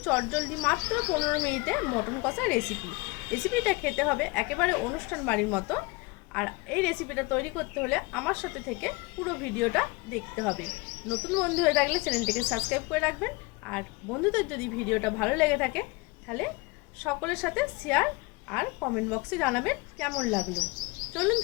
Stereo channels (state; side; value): quieter; right; 25.5 dB